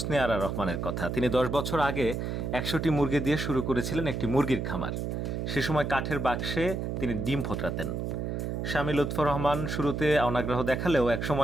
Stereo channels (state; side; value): noise; right; hum, 3 dB below the sound